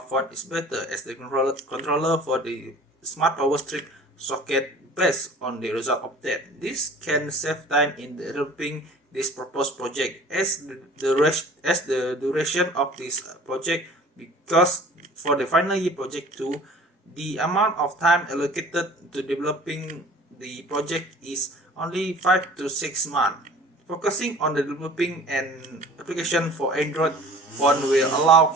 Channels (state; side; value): normal; both; correlation 0.46